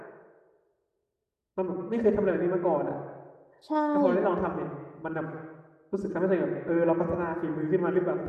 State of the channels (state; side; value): identical; both; correlation 1.00